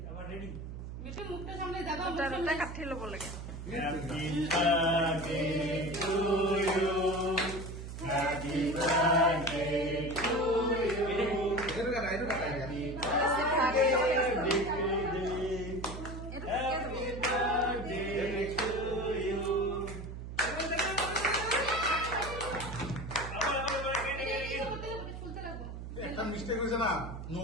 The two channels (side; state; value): right; noise; hum, 9 dB below the sound